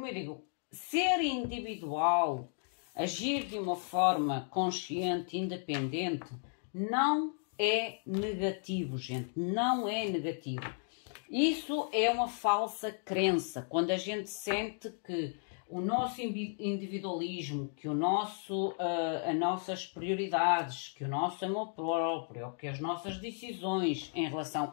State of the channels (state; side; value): silent; right; 55 dB below the other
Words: eu digo, ser individual, agir de uma forma consciente, independente, não é negativo, gente, não é negativo. Isso é uma falsa crença, quando a gente sente que o nosso individualismo, que as nossas prioridades, que o nosso amor próprio, que as nossas decisões em